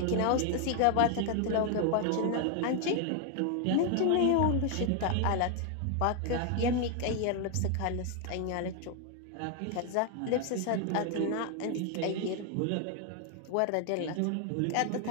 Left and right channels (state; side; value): different; both; correlation 0.01